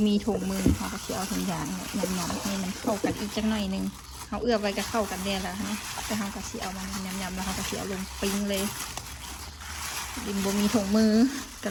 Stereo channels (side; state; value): both; identical; correlation 1.00